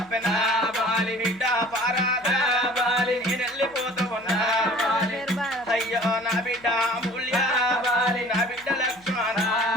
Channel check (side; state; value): left; noise; hum, 27 dB below the sound